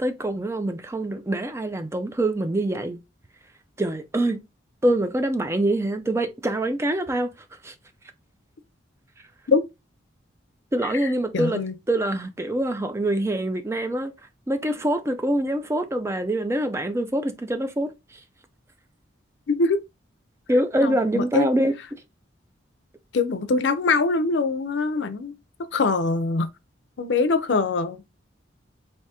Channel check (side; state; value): both; normal; correlation 0.55